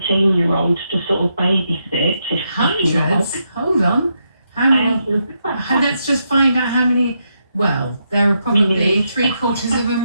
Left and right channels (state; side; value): inverted; both; correlation -0.81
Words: to sort of babysit. Hundreds? Hold on. How many? Let's just find out how many. Well, there are probably